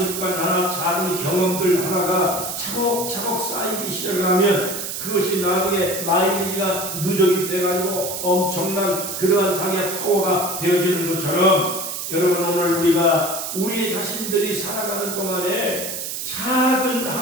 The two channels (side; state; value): right; noise; hiss, 5 dB below the sound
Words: 하나, 작은 경험들 하나가 차곡차곡 쌓이기 시작하면 그것이 나중에 마일리지가 누적이 돼가지고 엄청난 그러한 자기의 파워가 되어지는 것처럼 여러분 오늘 우리가 우리 자신들이 살아가는 동안에 작은